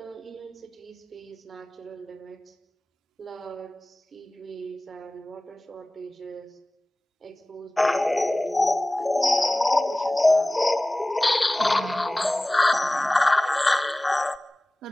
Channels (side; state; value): both; normal; correlation 0.98